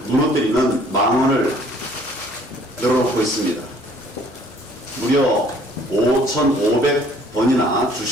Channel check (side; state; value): both; normal; correlation 0.57